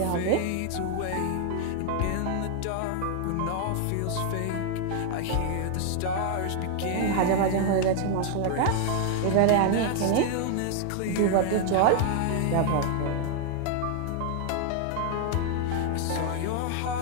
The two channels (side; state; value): both; different; correlation 0.00